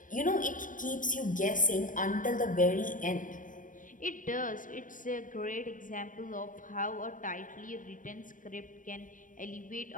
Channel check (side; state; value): right; late; 0.38 ms